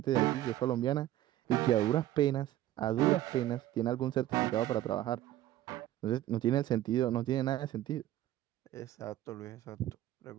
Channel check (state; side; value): quieter; left; 13.9 dB